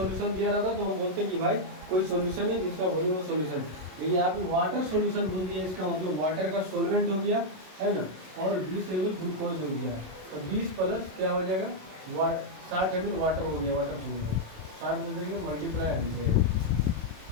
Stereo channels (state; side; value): late; left; 27 ms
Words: दिया रहता तो हम बोलते हैं कि भाई कोई सॉल्यूशन है जिसका वॉल्यूम ऑफ सॉल्यूशन, लेकिन यहाँ पे वाटर सॉल्यूशन बोल दिया, इसका मतलब वाटर का सॉल्वेंट हो गया, है ना, और 20 ml ग्लूकोज हो गया, तो 20 प्लस क्या हो जाएगा, 60 ml वाटर हो गया, वाटर सॉल्यूशन 60 में देंगे मल्टीप्लाई 100,